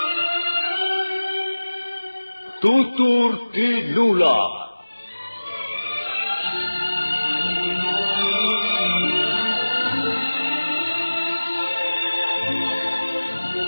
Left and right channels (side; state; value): both; inverted; correlation -1.00